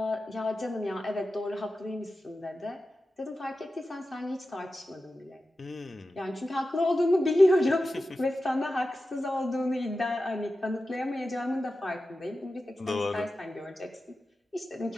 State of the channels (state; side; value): normal; both; correlation 0.93